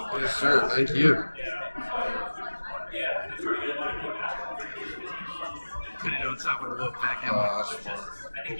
Yes, sir. Thank you. on top of the Wolfpack Oh, helmet. that's smart.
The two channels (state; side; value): inverted; both; correlation -1.00